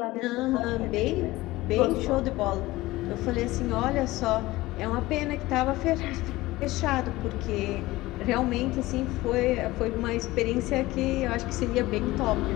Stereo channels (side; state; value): right; quieter; 18.7 dB